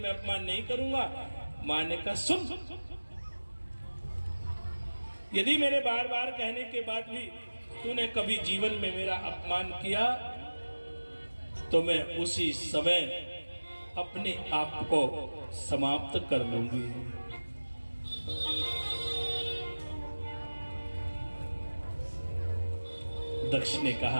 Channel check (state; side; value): inverted; both; correlation -1.00